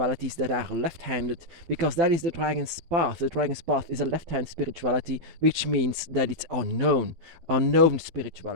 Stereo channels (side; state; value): left; late; 12 ms